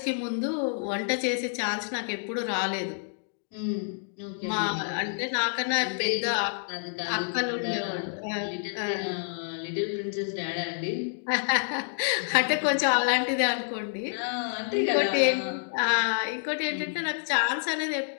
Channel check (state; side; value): silent; right; digital silence